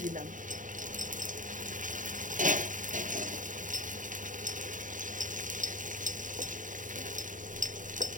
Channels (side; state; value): left; late; 0.38 ms